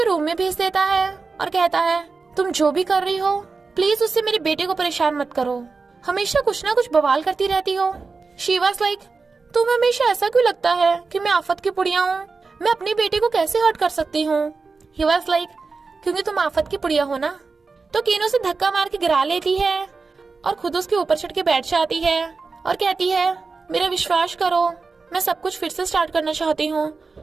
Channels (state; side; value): quieter; left; 4.4 dB